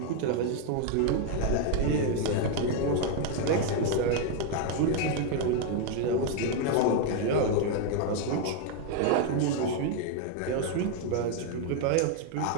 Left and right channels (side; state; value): both; different; correlation 0.01